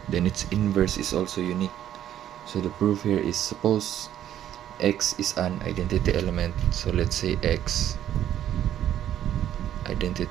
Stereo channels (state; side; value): quieter; left; 11.2 dB